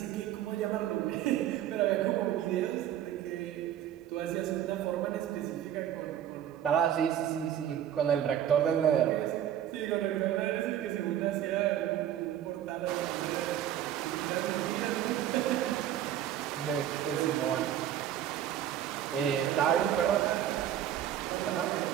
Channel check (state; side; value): quieter; left; 11.0 dB